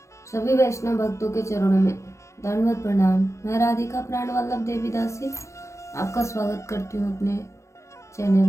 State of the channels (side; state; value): right; late; 0.14 ms